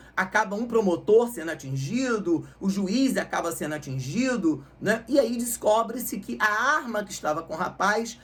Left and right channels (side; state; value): both; identical; correlation 1.00